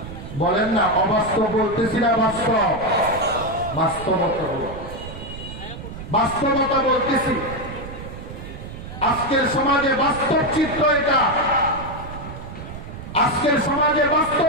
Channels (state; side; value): noise; right; rumble, 11 dB below the sound